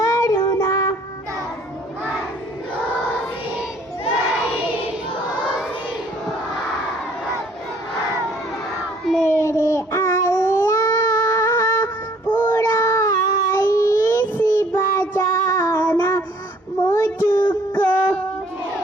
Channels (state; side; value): normal; both; correlation 0.59